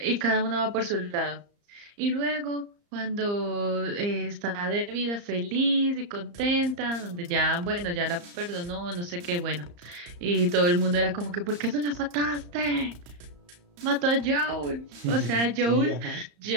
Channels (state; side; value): late; left; 34 ms